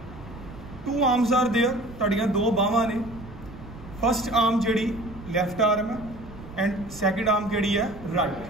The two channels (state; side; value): noise; right; rumble, 16 dB below the sound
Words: 2 arms are there. तुहाड़ियां 2 बाहां ने. फर्स्ट आर्म जिहड़ी लैफ्ट आर्म है एंड सैकेंड आर्म किहड़ी है राइट.